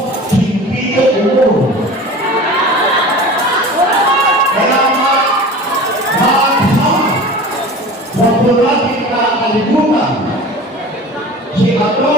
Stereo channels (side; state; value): both; normal; correlation 0.37